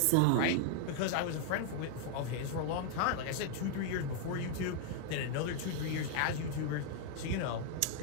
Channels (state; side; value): different; both; correlation 0.00